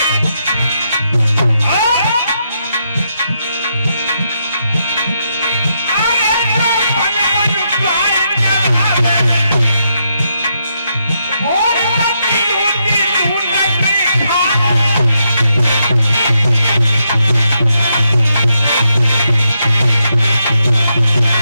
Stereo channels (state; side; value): inverted; both; correlation -0.80